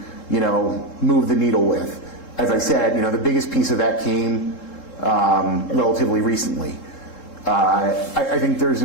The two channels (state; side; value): late; right; 3.7 ms